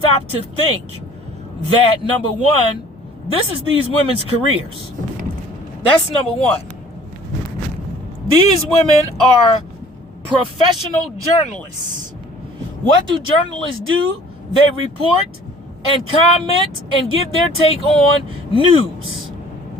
to think that, number one, this is these women's careers. That's number one. These women are professional journalists. What do journalists do? They report and comment and give their take on news.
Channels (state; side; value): normal; both; correlation 0.52